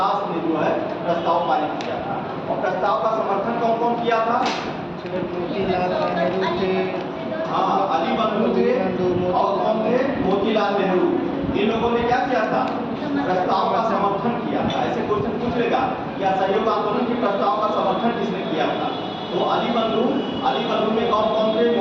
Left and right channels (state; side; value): identical; both; correlation 1.00